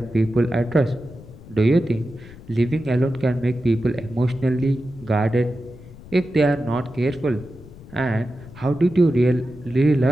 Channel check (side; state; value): left; noise; rumble, 18 dB below the sound